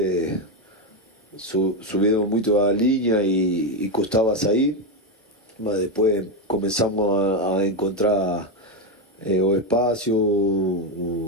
subieron mucho a la línea y costaba salir, mas después comenzamos a encontrar o espacio,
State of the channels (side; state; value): both; normal; correlation 0.09